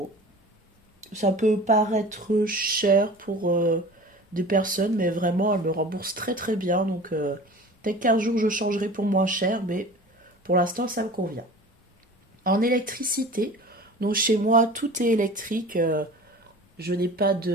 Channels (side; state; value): both; normal; correlation 0.40